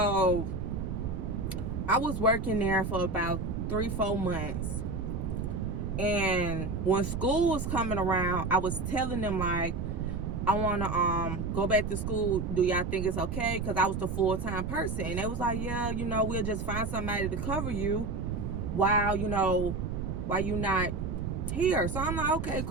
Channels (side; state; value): right; noise; rumble, 3 dB below the sound